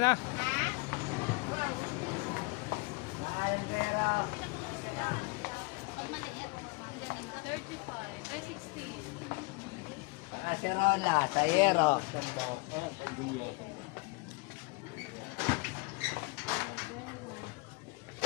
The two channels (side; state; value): right; quieter; 27.6 dB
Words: Ay, 16. Acerola, Tayero.